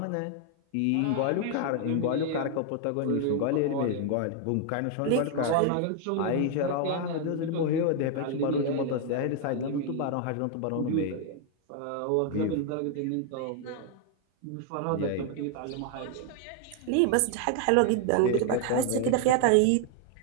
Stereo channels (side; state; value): both; different; correlation 0.00